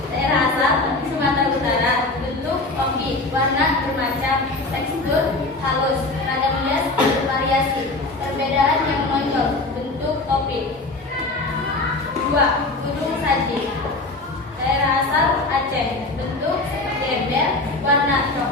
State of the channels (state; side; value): quieter; right; 3.1 dB